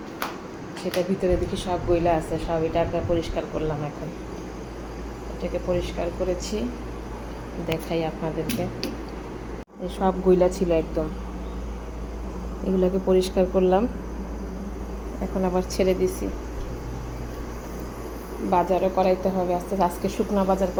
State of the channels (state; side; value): identical; both; correlation 1.00